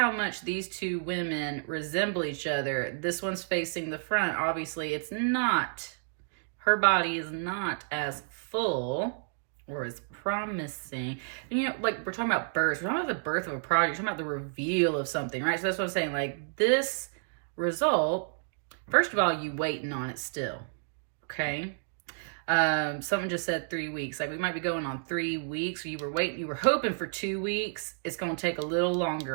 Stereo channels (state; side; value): silent; left; digital silence